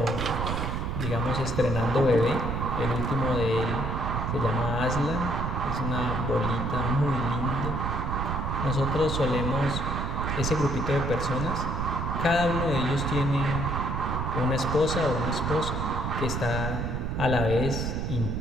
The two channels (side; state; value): right; noise; rumble, 1 dB below the sound